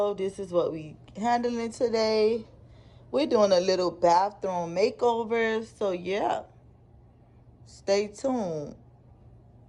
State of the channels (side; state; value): both; identical; correlation 1.00